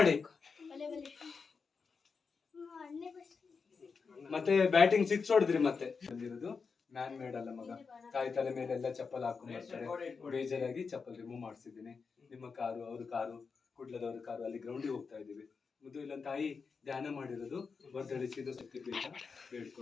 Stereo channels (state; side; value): quieter; right; 5.2 dB